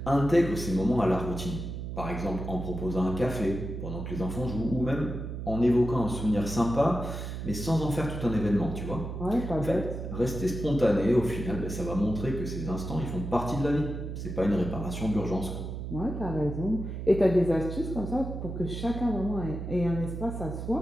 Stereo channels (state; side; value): noise; right; hum, 6 dB below the sound